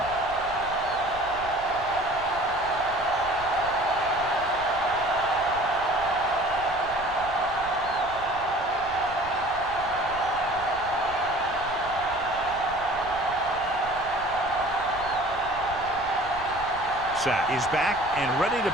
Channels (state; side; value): noise; right; rumble, 16 dB below the sound